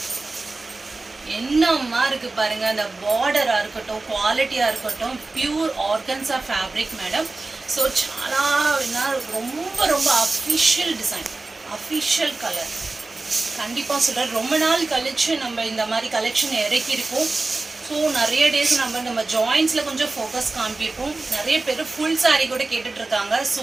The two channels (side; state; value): left; quieter; 3.4 dB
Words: என்னம்மா இருக்கு பாருங்க, அந்த பார்டரா இருக்கட்டும், குவாலிட்டியா இருக்கட்டும், pure organza fabric madam. So చాలా ரொம்ப ரொம்ப அஃபிஷியல் டிசைன், அஃபிஷியல் கலர். கண்டிப்பாக சொல்கிறேன், ரொம்ப நாள் கழிச்சு நம்ம இந்த மாதிரி கலெக்ஷன் இறக்கியிருக்கோம். ஸோ நிறைய டேஸ் நம்ம ஜாயின்ஸில் கொஞ்சம் ஃபோக்கஸ் காமிப்போம். நிறைய பேர் ஃபுல் சாரீ கூட கேட்டுட்டு இருக்காங்க.